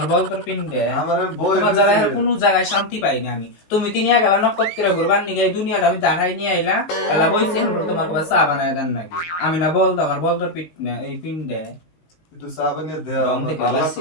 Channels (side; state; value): right; late; 19 ms